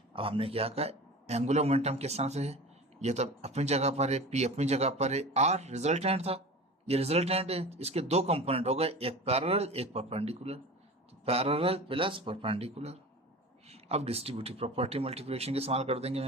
अब हमने क्या कहा? एंगुलर मोमेंटम किस तरह से है? ये तो अपनी जगह पर है, पी अपनी जगह पर है, आर रिजल्टेंट था, ये रिजल्टेंट है, इसके दो कंपोनेंट हो गए, एक पैरेलल एक परपेंडिकुलर, तो पैरेलल प्लस परपेंडिकुलर। अब डिस्ट्रीब्यूटिव प्रॉपर्टी मल्टीप्लिकेशन के इस्तेमाल कर देंगे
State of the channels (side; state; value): both; normal; correlation 0.34